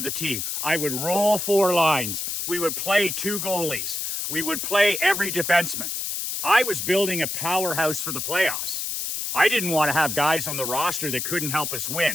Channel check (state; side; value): noise; left; hiss, 3 dB below the sound